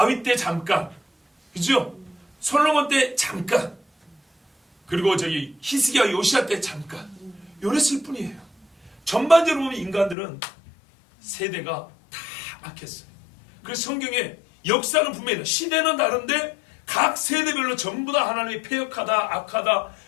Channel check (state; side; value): drops out; right; at 10.2 s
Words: 때 잠깐 그죠? 솔로몬 때 잠깐 그리고 저기 히스기야 요시야 때 잠깐 요랬을 뿐이에요. 전반적으로 보면 인간들은 세대가 다 악했어요. 그래서 성경에 역사는 분명히 시대는 다른데 각 세대별로 전부 다 하나님이 패역하다 악하다